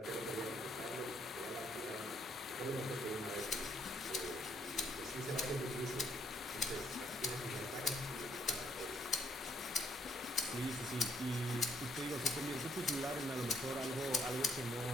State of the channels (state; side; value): normal; both; correlation 0.69